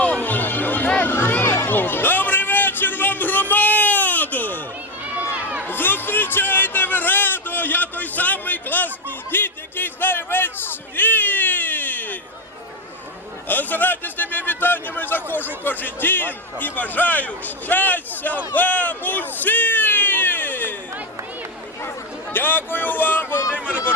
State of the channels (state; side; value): normal; both; correlation 0.14